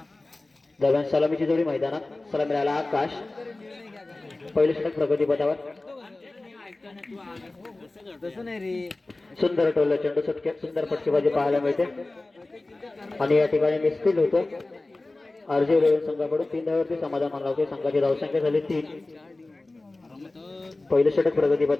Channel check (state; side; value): quieter; right; 3.0 dB